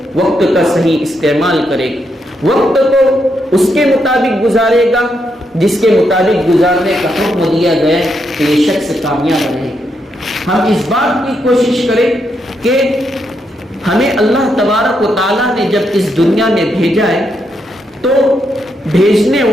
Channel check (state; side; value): normal; both; correlation 0.80